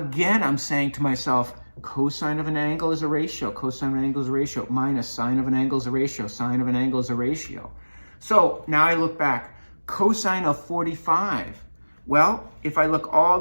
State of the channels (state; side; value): inverted; both; correlation -1.00